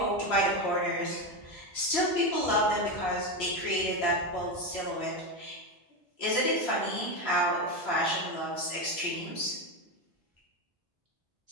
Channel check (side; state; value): both; normal; correlation 0.14